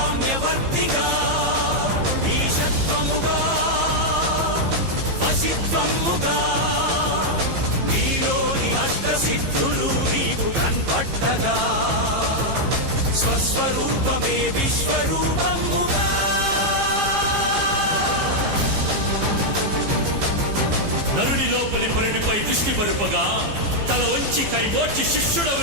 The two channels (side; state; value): left; late; 15 ms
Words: ఈశత్వముగా వశిత్వముగా నీలోని అష్టసిద్ధులు నీకు కన్పట్టగా స్వస్వరూపమే విశ్వరూపముగా నరుని లోపలి పరునిపై దృష్టి పరుపగా తల వంచి కైమోర్చి శిష్యుడవు